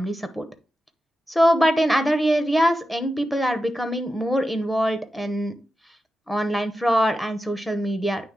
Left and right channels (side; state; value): both; normal; correlation 0.91